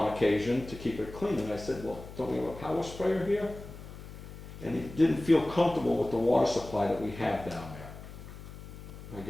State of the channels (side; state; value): left; noise; hum, 14 dB below the sound